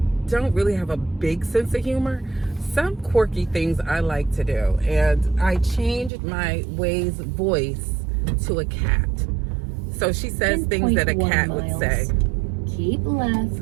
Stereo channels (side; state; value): left; drops out; at 6.1 s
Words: don't really have a big sense of humor, some quirky things I like to do. And I changed my Waze voice to a cat. So she says things that a 10.1 cat would say. Keep left.